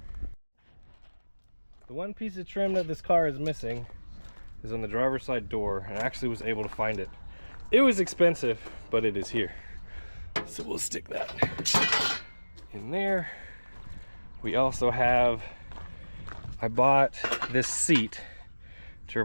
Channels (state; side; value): inverted; both; correlation -1.00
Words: The one piece of trim that this car is missing is on the driver's side door, and I actually was able to find it. It was expensive, but it is here. So we'll stick that in there. We also have, I bought this seat to